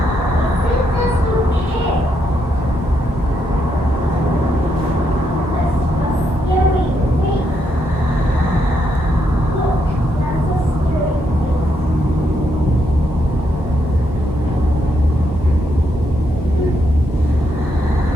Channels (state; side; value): normal; both; correlation 0.78